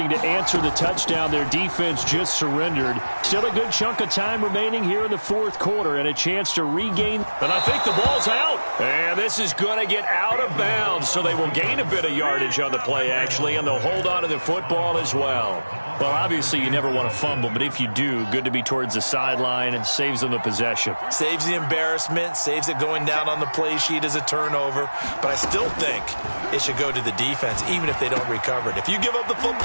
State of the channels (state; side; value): inverted; both; correlation -1.00